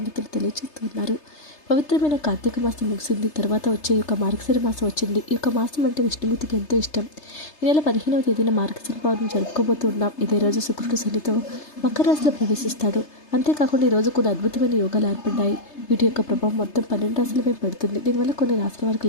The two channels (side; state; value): right; late; 3.3 ms